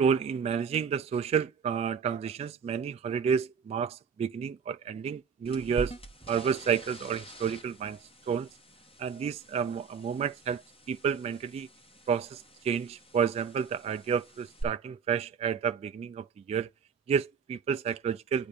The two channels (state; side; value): quieter; left; 6.7 dB